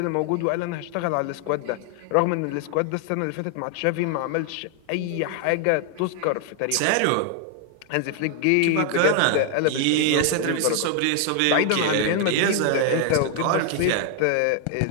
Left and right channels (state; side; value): different; both; correlation 0.00